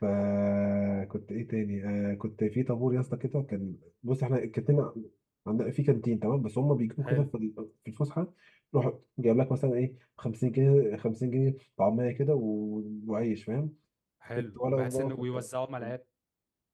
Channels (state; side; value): identical; both; correlation 1.00